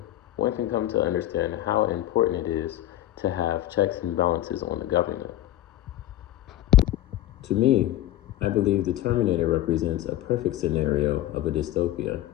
one can come to understand how important it is to have checks and balances on the government. To me, I believe the Terminator represents a perfect scenario of a dystopia.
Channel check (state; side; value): quieter; right; 13.8 dB